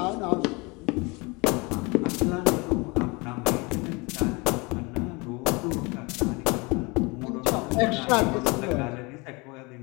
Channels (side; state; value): right; quieter; 27.1 dB